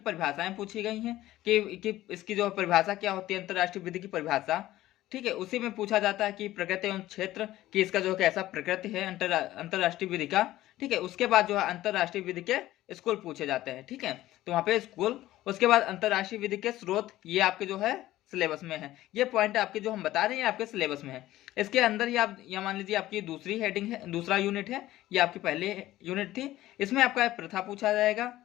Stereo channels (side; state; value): right; quieter; 15.3 dB